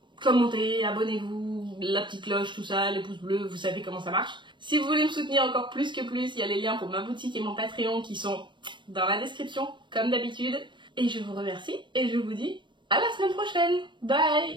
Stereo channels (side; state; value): left; late; 0.23 ms